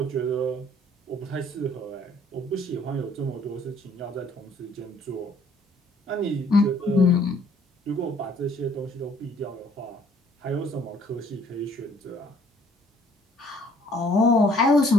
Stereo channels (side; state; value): both; normal; correlation 0.60